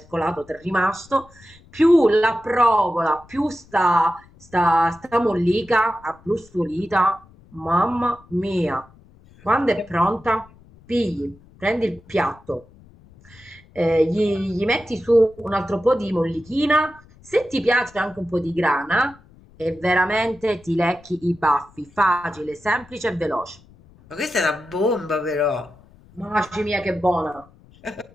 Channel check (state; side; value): noise; left; rumble, 26 dB below the sound